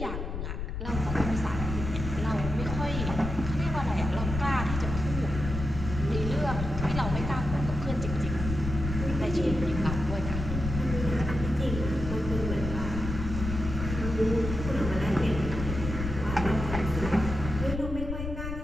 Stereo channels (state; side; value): noise; left; rumble, 5 dB below the sound